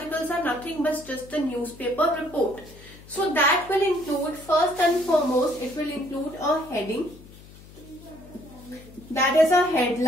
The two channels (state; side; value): noise; left; hum, 20 dB below the sound